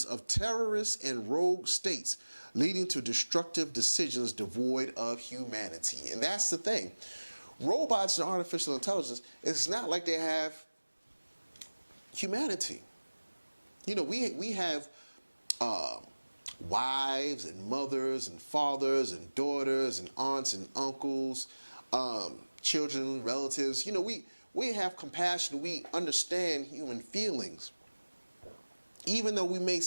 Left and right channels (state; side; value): inverted; both; correlation -1.00